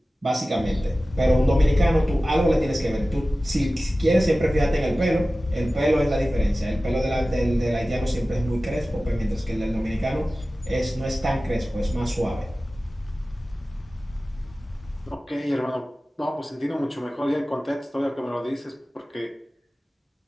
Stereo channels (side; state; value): both; normal; correlation 0.96